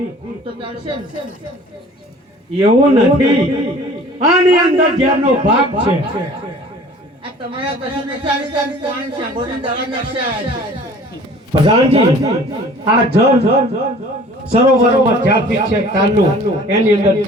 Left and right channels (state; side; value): normal; both; correlation 0.48